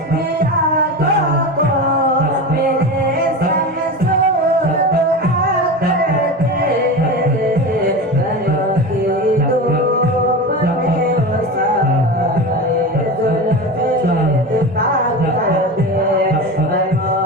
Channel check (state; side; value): normal; both; correlation 0.26